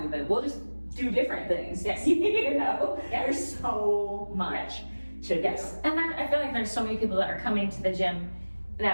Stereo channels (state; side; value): inverted; both; correlation -1.00